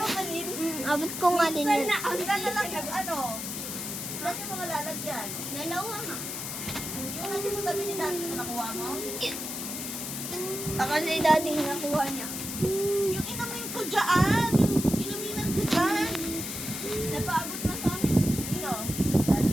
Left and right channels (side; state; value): left; noise; hiss, 6 dB below the sound